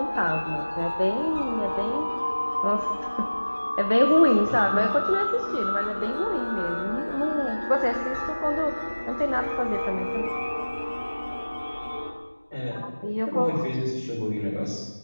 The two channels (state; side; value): inverted; both; correlation -1.00